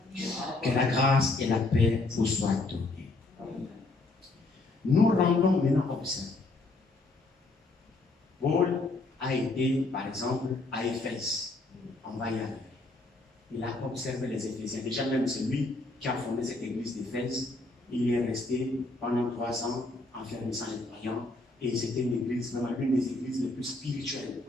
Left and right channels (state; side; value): quieter; right; 3.2 dB